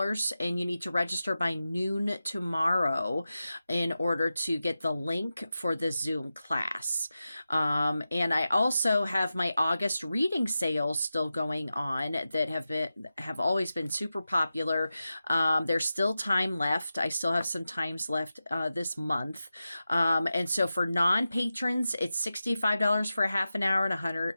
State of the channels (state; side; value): inverted; both; correlation -0.93